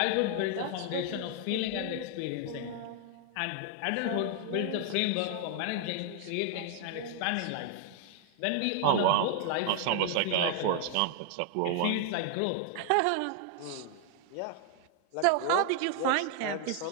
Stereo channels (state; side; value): different; both; correlation 0.00